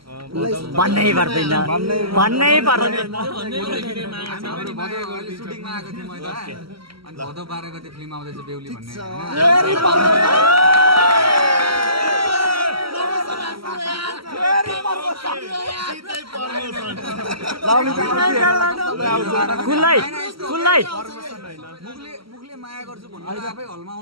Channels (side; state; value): left; late; 0.75 ms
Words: भन्नै पर्दैन सुटिङमा आएको थिएँ मैले अनि भदौ 12 गते फिल्म आउँदैछ बेहुली भन्ने मुखले माया गर्छु भन्नु आफै हलमा